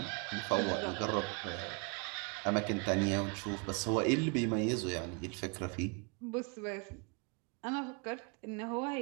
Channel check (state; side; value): quieter; left; 33.7 dB